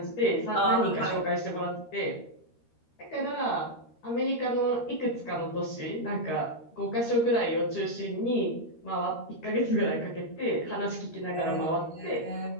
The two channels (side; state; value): right; late; 13 ms